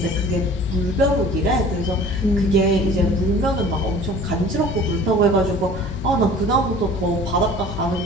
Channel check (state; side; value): normal; both; correlation 0.46